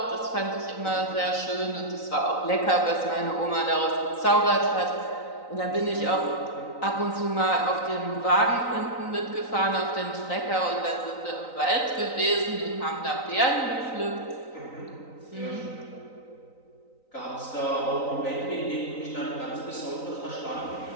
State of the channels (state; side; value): late; right; 3.9 ms